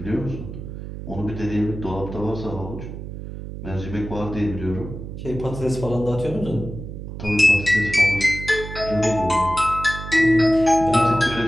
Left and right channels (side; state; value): right; noise; hum, 9 dB below the sound